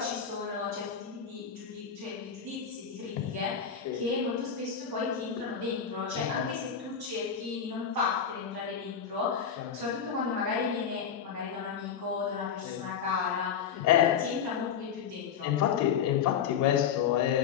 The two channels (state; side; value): quieter; right; 7.5 dB